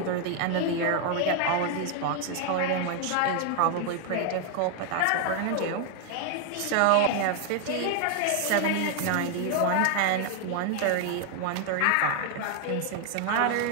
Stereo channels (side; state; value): both; different; correlation 0.00